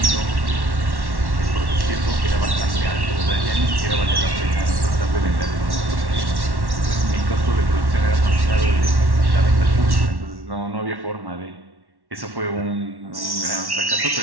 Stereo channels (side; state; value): left; late; 1.1 ms